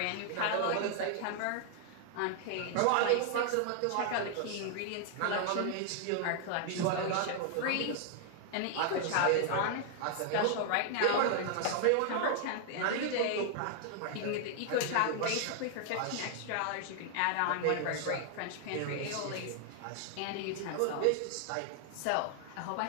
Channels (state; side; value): different; both; correlation 0.00